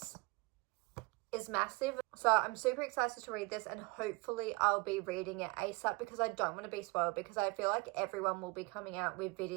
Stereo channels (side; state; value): left; quieter; 24.7 dB